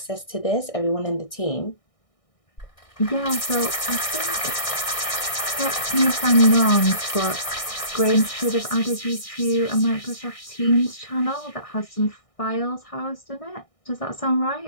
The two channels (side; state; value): right; late; 1.6 ms